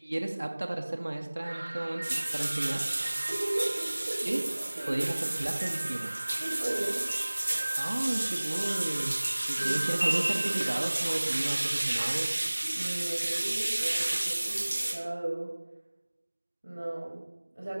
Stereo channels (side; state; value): both; inverted; correlation -1.00